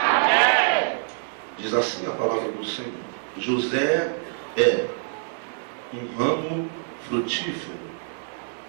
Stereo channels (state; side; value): silent; left; digital silence